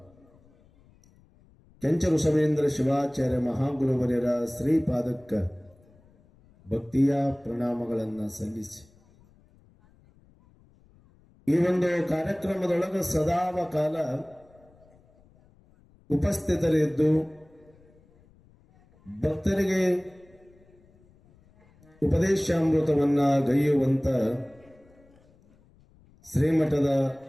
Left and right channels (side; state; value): left; noise; rumble, 30 dB below the sound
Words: ಕೆಂಚ ಋಷಭೇಂದ್ರ ಶಿವಾಚಾರ್ಯ ಮಹಾಗುರುವರ್ಯರ ಶ್ರೀಪಾದಕ್ಕ ಭಕ್ತಿಯ ಪ್ರಣಾಮಗಳನ್ನು ಸಲ್ಲಿಸಿ, ಈ ಒಂದು ಕಾರ್ಯಕ್ರಮದೊಳಗ ಸದಾವಕಾಲ ಉಪಸ್ಥಿತರಿದ್ದು ಭಕ್ತರಿಗೆ ಉಪದೇಶಾಮೃತವನ್ನ ಗೈಯುವಂತ ಶ್ರೀಮಠದ